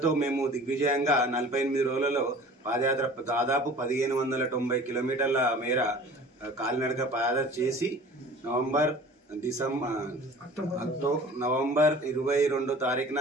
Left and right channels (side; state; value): both; normal; correlation 0.44